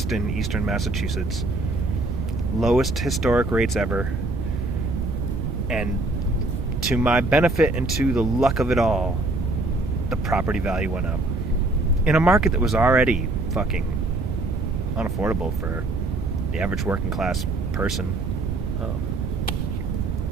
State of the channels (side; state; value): right; noise; rumble, 2 dB below the sound